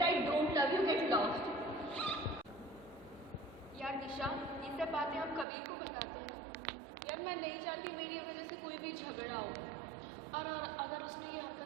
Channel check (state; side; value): drops out; left; at 5.5 s